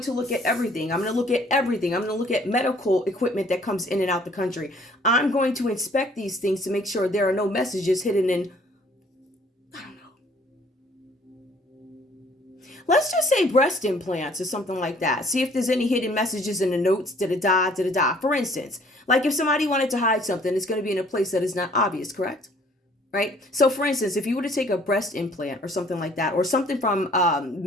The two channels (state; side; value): normal; both; correlation 0.58